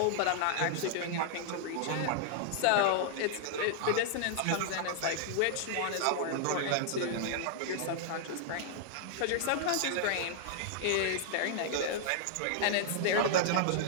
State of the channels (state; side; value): different; both; correlation -0.01